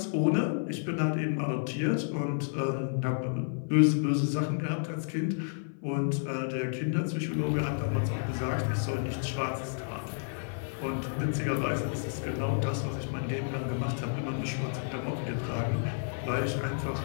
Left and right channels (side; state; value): right; silent; 55 dB below the other